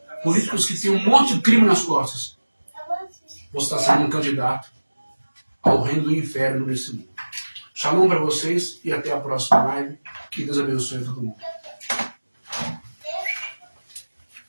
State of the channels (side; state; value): both; inverted; correlation -1.00